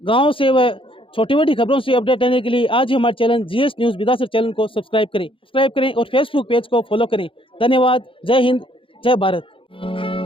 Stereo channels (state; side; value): late; right; 0.25 ms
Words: गाँव से व छोटी बड़ी खबरों से अपडेट रहने के लिए आज ही हमारे channel GS news Vidasar channel को सब्सक्राइब करें और फेसबुक पेज को फॉलो करें। धन्यवाद। जय हिंद, जय Bharat.